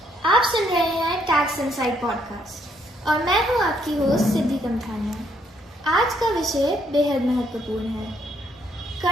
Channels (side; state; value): both; normal; correlation 0.71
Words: आप सुन रहे हैं टैक्स इनसाइड पॉडकास्ट और मैं हूं आपकी होस्ट सिद्धि कमथानिया। आज का विषय बेहद महत्वपूर्ण है,